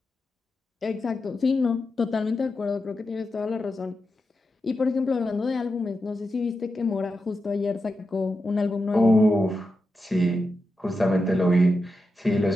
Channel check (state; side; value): normal; both; correlation 0.89